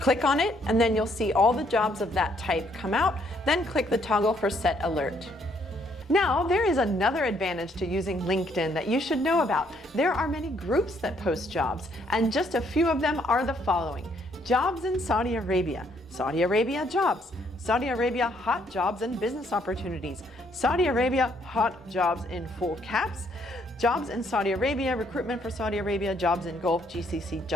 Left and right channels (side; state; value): both; normal; correlation 0.69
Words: on it, and then you'll see all the jobs of that type come out. Then click the toggle for set alert. Now, there is another advantage to using LinkedIn that you should know about. There are many groups that post jobs, and just a few of them are the following: Jobs in Saudi Arabia, Saudi Arabia Jobs, Saudi Arabia Hot Jobs and Business Opportunities, Saudi Arabia Hot Jobs in full caps, Jobs in Saudi Arabia, Recruitment for Saudi Arabia, Jobs in Gulf, GCC